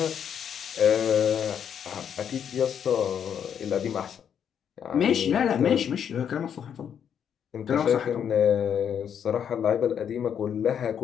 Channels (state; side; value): quieter; right; 8.4 dB